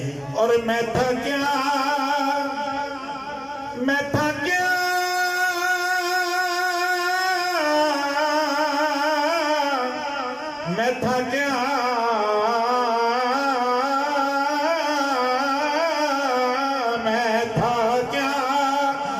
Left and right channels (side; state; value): both; identical; correlation 1.00